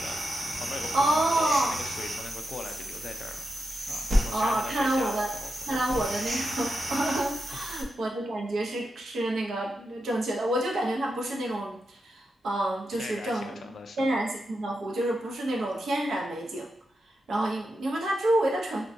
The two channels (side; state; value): both; normal; correlation 0.88